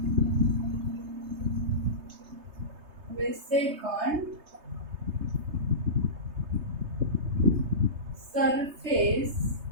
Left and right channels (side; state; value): left; late; 3.3 ms